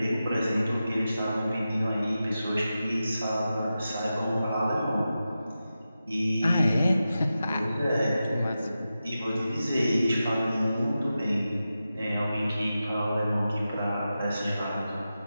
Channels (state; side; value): inverted; both; correlation -0.92